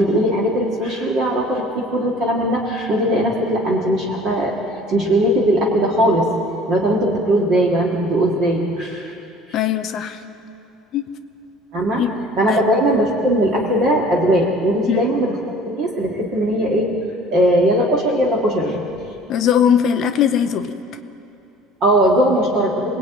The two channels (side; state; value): both; normal; correlation 0.49